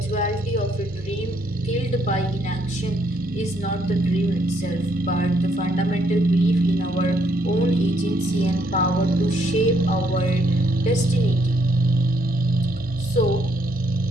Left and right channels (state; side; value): normal; both; correlation 0.71